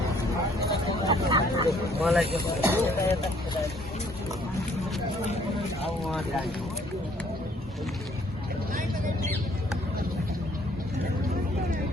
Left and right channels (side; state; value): both; normal; correlation 0.62